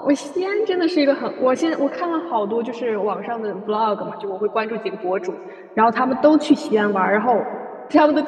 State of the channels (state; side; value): identical; both; correlation 1.00